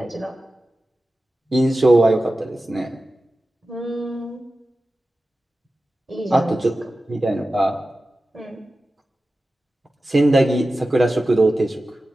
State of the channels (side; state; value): both; normal; correlation 0.94